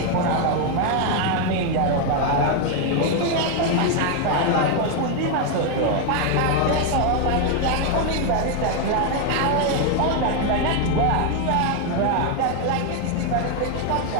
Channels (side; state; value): both; different; correlation 0.01